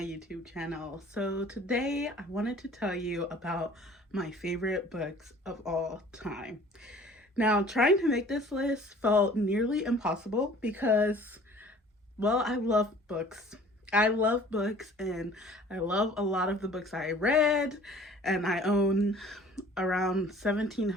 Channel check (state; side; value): normal; both; correlation 0.50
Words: YouTube channel. So today I wanted to tell you about my favorite books of all time. Now trying to make this list felt nearly impossible because, well, I love books. I love books and I love a lot of the books I read, and I own around